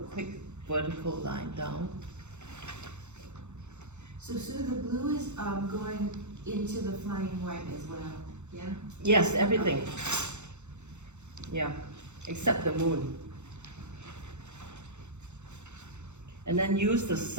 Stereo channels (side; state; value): left; late; 0.83 ms